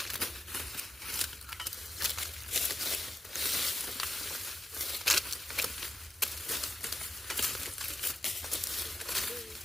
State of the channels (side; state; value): both; normal; correlation 0.89